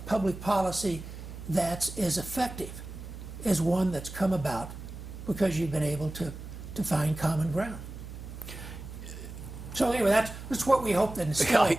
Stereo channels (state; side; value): noise; right; hum, 11 dB below the sound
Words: policy that's as effective as one that's come about because you've been able to find common ground. So anyway, that's what we hope to instill.